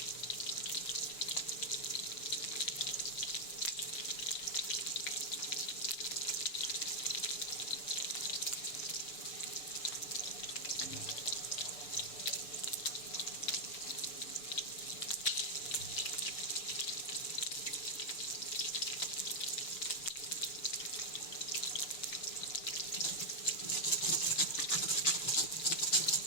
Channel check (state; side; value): late; right; 6.8 ms